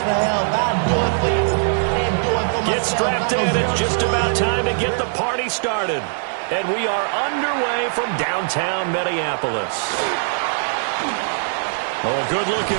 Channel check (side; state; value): left; silent; digital silence